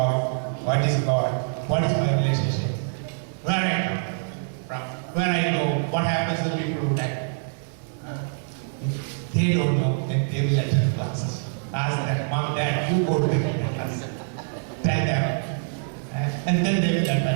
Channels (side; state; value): left; silent; digital silence